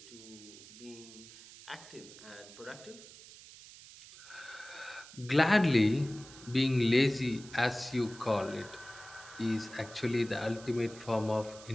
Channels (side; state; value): right; noise; hiss, 18 dB below the sound